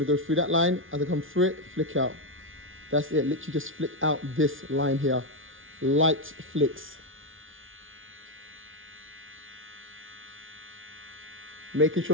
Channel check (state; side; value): late; left; 0.57 ms